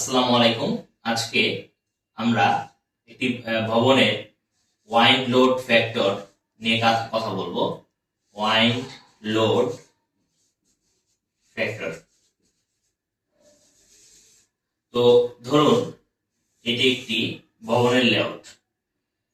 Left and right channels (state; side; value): identical; both; correlation 1.00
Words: আলাইকুম। আজকে আমরা একটি ভবনের ওয়াইন্ড লোড ফ্যাক্টর নিয়ে কথা বলবো। Wind load factor. তো ধরুন এটি একটি ভবনের লেআউট।